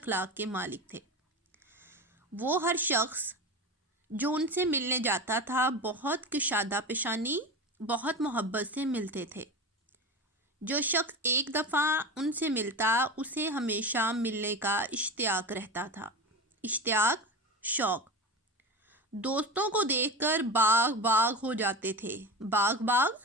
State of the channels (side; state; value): both; normal; correlation 0.26